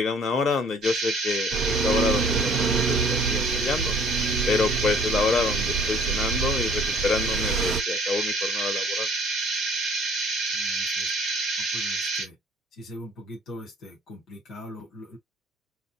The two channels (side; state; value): both; normal; correlation 0.54